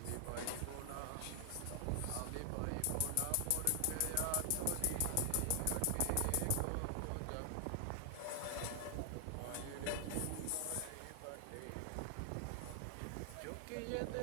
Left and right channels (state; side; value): different; both; correlation 0.00